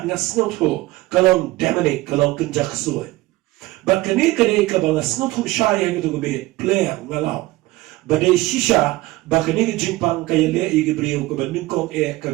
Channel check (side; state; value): left; quieter; 19.2 dB